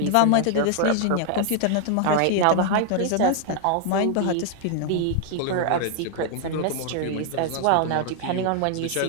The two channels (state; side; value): different; both; correlation 0.00